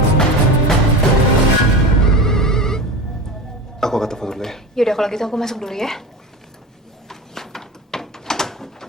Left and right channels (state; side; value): normal; both; correlation 0.27